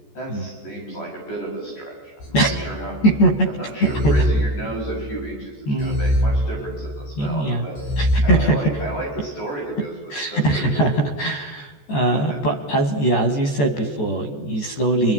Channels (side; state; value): right; late; 14 ms